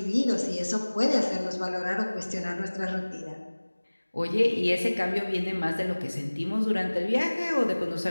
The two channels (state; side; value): inverted; both; correlation -1.00